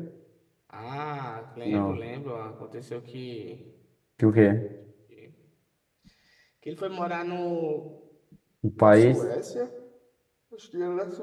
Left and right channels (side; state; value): both; identical; correlation 1.00